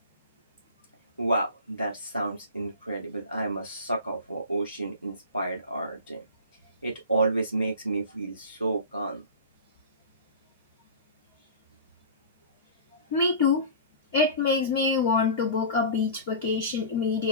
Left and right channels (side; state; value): both; inverted; correlation -0.35